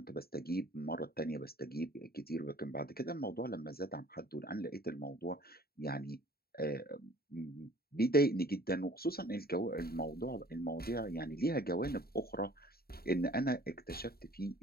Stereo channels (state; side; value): late; right; 0.45 ms